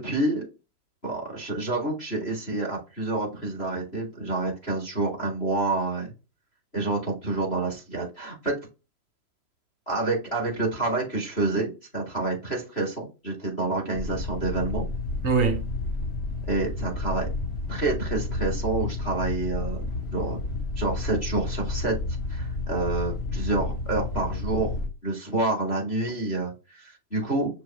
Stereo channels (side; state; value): right; late; 3.0 ms